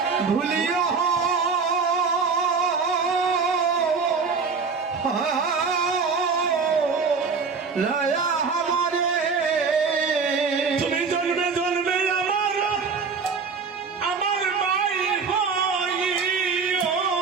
ভুলিও লয়া हमारे তুমি জন্মে জন্মে আমার ভাই হইও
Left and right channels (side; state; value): left; quieter; 5.1 dB